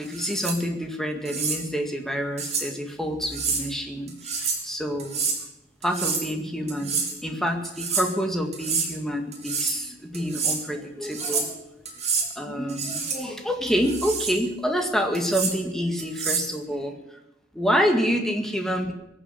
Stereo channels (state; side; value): normal; both; correlation 0.57